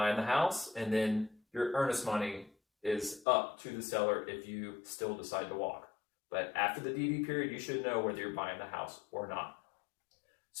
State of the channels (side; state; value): right; drops out; at 3.2 s